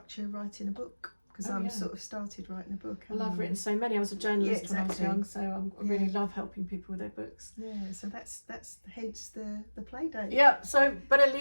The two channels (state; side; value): inverted; both; correlation -1.00